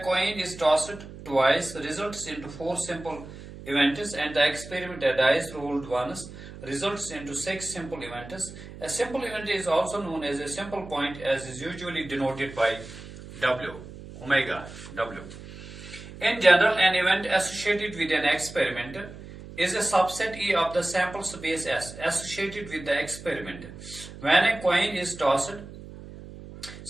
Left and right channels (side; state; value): right; noise; hum, 14 dB below the sound